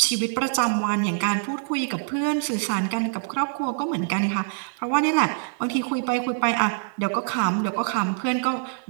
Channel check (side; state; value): left; silent; digital silence